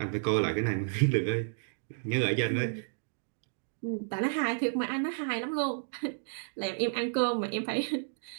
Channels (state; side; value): silent; left; digital silence